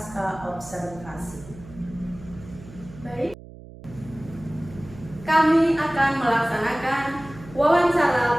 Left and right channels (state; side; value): noise; right; hum, 17 dB below the sound